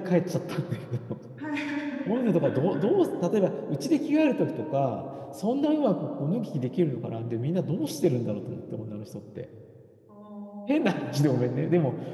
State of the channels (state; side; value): identical; both; correlation 1.00